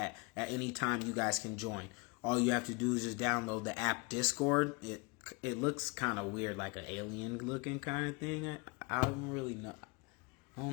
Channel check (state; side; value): quieter; right; 29.8 dB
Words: at any time you guys can join. All you have to do is just download the app Discord. it looks kind of weird, like an alien looking kind of thing. I don't really know. I